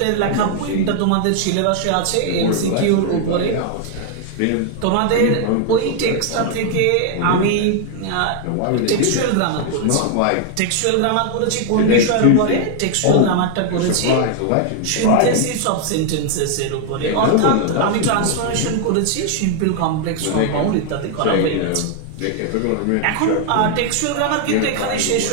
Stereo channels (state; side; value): different; both; correlation 0.00